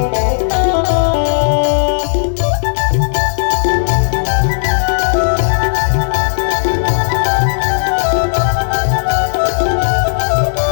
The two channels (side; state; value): right; silent; digital silence